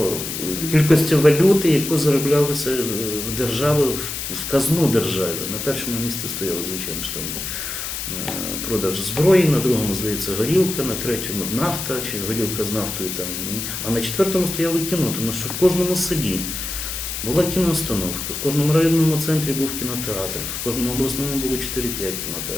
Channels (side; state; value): left; noise; hiss, 5 dB below the sound